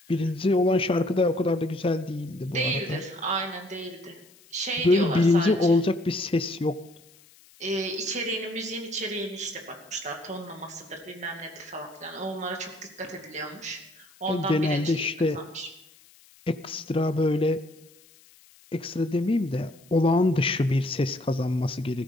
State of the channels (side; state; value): left; noise; hiss, 27 dB below the sound